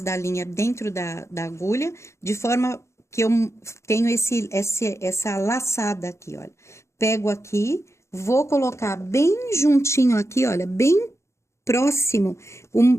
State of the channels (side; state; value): right; late; 0.14 ms